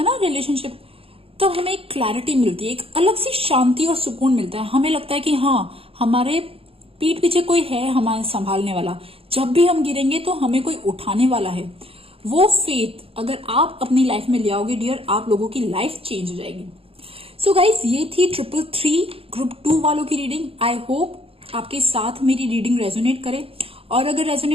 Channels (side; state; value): left; late; 0.27 ms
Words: है ना रिलेशनशिप, तब हमें एक क्लैरिटी मिलती है, एक अलग सी शांति और सुकून मिलता है। हमें लगता है कि हाँ, हमारे पीठ पीछे कोई है हमारे संभालने वाला, जब भी हम गिरेंगे तो हमें कोई उठाने वाला है। वो फेथ अगर आप अपनी लाइफ में ले आओगे डियर, आप लोगों की लाइफ चेंज हो जाएगी। सो गाइज, ये थी 333 ग्रुप 2 वालों की रीडिंग। आई होप आपके साथ मेरी रीडिंग रेजोनेट करे, और अगर